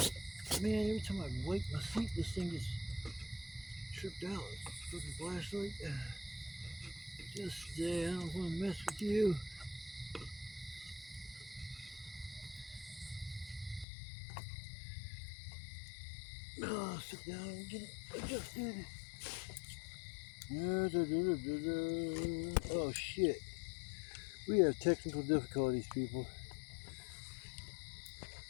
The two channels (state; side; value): drops out; right; at 13.9 s